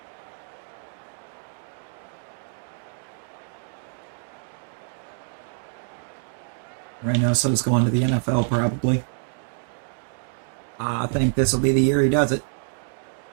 Right now, so it's going to the NFL, probably. I think this will be the year he does it.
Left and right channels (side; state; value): left; silent; digital silence